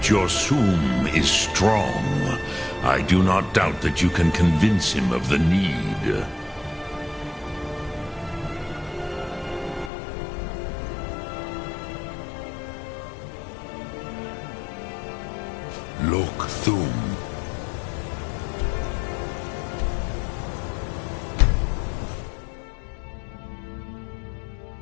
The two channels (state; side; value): drops out; right; at 9.9 s